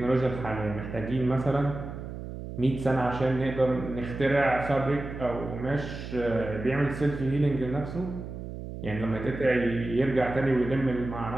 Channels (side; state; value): right; noise; hum, 9 dB below the sound